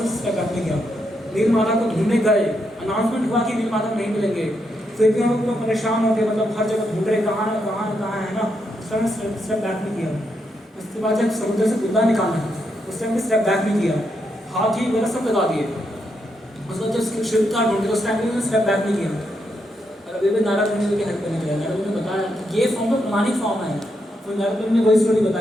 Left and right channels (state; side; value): normal; both; correlation 0.80